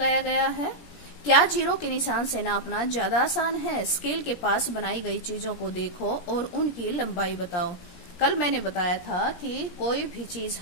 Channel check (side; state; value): right; late; 17 ms